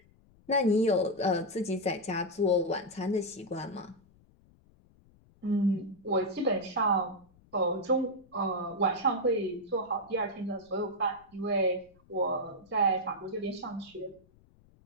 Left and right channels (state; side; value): noise; left; rumble, 29 dB below the sound